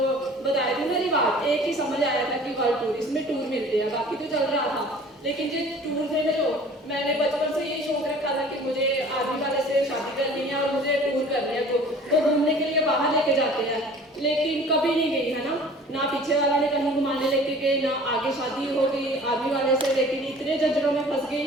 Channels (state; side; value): normal; both; correlation 0.47